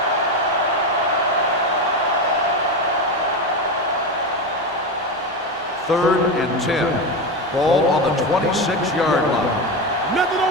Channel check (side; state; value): both; normal; correlation 0.17